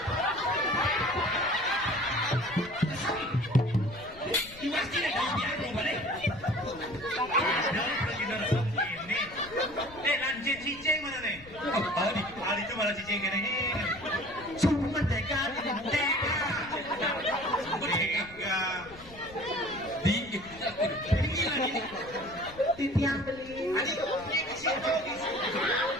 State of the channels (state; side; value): noise; left; rumble, 20 dB below the sound